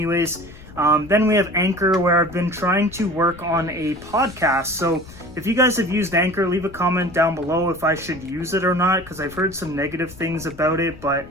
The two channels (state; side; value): noise; left; rumble, 19 dB below the sound